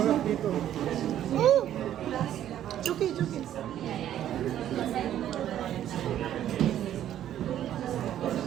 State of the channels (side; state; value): left; quieter; 11.4 dB